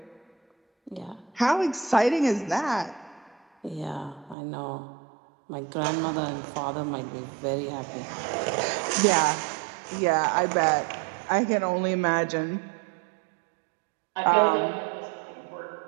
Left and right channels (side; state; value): left; drops out; at 4.4 s